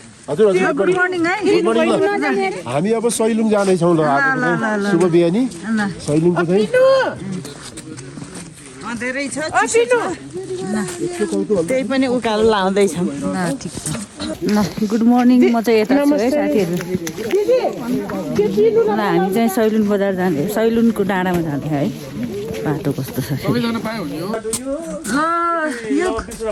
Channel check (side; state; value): both; identical; correlation 1.00